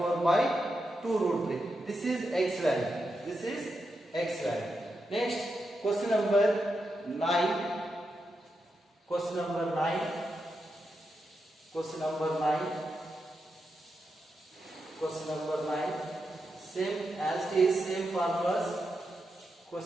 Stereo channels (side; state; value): both; normal; correlation 0.86